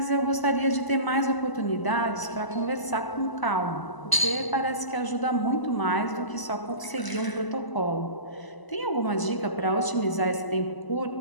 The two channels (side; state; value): right; late; 1.0 ms